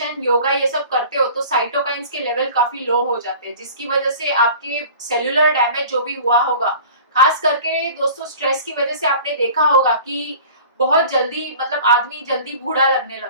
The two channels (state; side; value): inverted; both; correlation -0.44